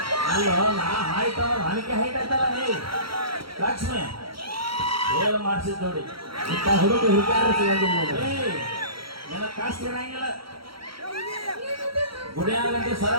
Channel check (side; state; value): left; late; 0.75 ms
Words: ಅಲ್ಲೋ ನಾ ಹೈಟ್ ನನಗೆ ಹೈಟ್ ಆಯ್ತಲ್ಲ ನೀ ಲಕ್ಷ್ಮಿ ಏನು ಮಾಡಿಸಿದ್ ನೋಡಿ ಇಂಥ ಹುಡುಗ ಹುಡುಗಾರ ಸಿಗೋದಿಲ್ಲ ನಿನ್ನ ಕಾಸ್ತಿ ಇರಂಗಿಲ್ಲ ಗುಡಿ ಆಗಂటే